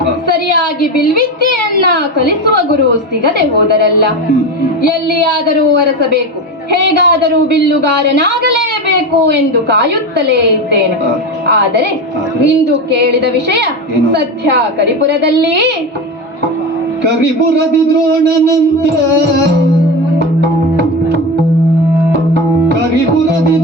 ಸರಿಯಾಗಿ ಬಿಲ್ವಿದ್ಯೆಯನ್ನ ಕಲಿಸುವ ಗುರು ಸಿಗದೆ ಹೋದರಲ್ಲ. ಎಲ್ಲಿಯಾದರೂ ಅರಸಬೇಕು, ಹೇಗಾದರೂ ಬಿಲ್ಲುಗಾರನಾಗಲೇಬೇಕು ಎಂದು ಕಾಯುತ್ತಲೇ ಇದ್ದೇನೆ. ಆದರೆ ಇಂದು ಕೇಳಿದ ವಿಷಯ ಸದ್ಯ ಕರಿಪುರದಲ್ಲಿ ಕರಿಪುರದಿ ದ್ರೋಣನಂತೆ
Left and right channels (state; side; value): normal; both; correlation 0.21